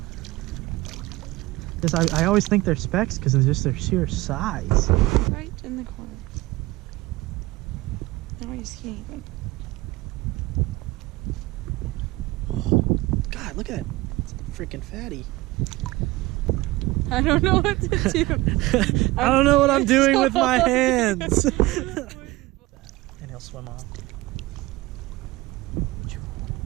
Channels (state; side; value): quieter; left; 19.8 dB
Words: I always think they're specks because of just their sheer size. Right in the corner. Now I just can't even. God, look at it. It's a freaking fatty. I don't know what to do. I don't know what I'm doing with my hands. And he'll swim off.